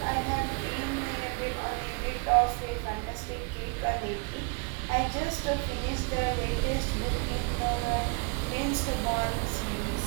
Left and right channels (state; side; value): quieter; left; 33.2 dB